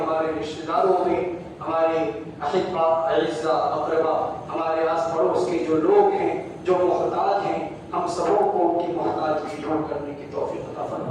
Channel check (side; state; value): both; identical; correlation 1.00